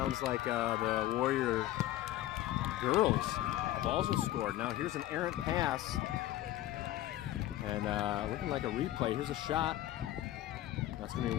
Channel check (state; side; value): quieter; right; 14.5 dB